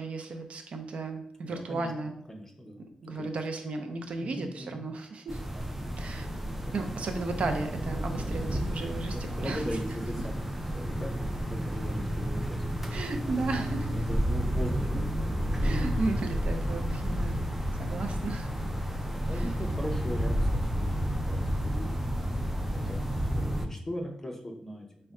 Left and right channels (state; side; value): normal; both; correlation 0.90